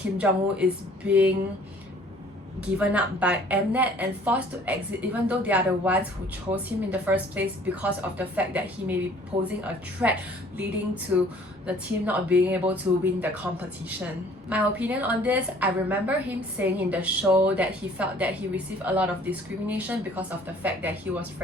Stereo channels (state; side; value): normal; both; correlation 0.55